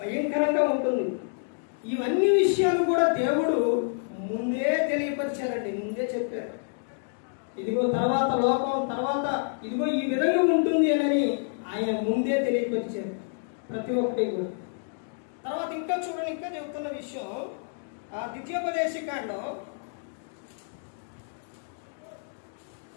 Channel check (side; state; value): right; silent; digital silence